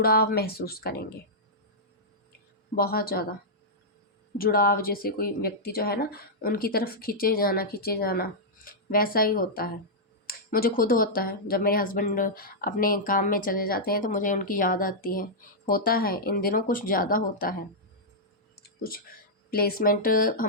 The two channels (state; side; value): normal; both; correlation -0.09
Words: महसूस करेंगे, बहुत ज़्यादा जुड़ाव। जैसे कोई व्यक्ति जो है ना उनकी तरफ खींचे जाना वैसा ही होता है। मुझे खुद होता है, जब मेरे हस्बैंड अपने काम में चले जाते हैं तो मुझे उनकी याद आती है। होता है, इन दिनों कुछ ज़्यादा होता है। कुछ प्लेसमेंट